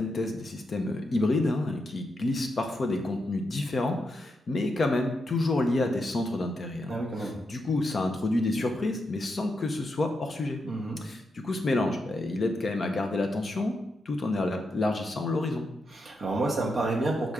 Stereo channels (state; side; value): normal; both; correlation 0.84